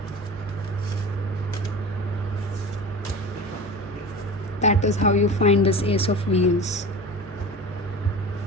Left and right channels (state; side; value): normal; both; correlation 0.33